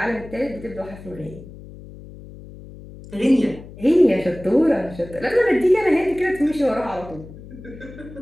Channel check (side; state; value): left; noise; hum, 16 dB below the sound